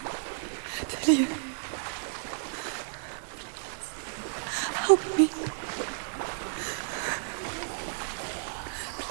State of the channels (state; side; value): silent; left; 55 dB below the other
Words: Dillion. Help me.